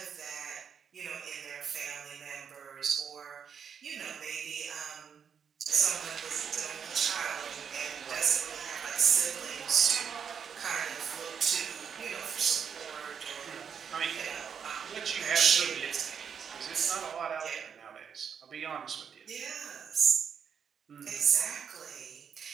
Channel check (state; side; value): quieter; left; 7.2 dB